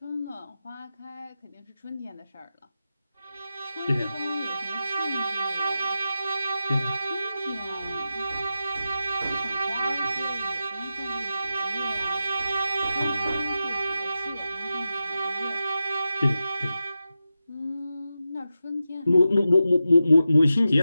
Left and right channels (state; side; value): inverted; both; correlation -0.90